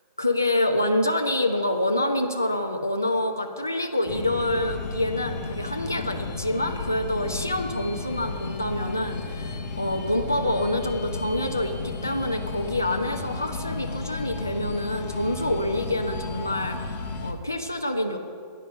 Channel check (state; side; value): inverted; both; correlation -0.73